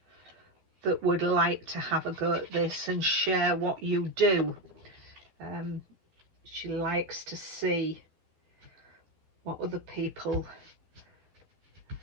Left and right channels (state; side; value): late; left; 12 ms